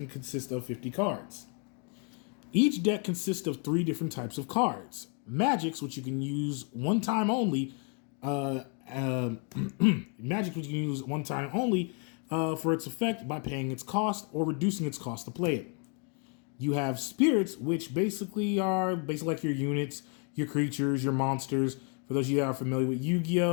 consist of 50 cards. Each deck consists of 3 different types of cards. Magics, which you can use one time only. Magic, which you can use one time only for its effect by paying its cost or reducing its cost to play it. You have spirits, which basically are like your units, your creatures, your monsters. For those of you that are familiar with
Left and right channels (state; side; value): quieter; right; 37.4 dB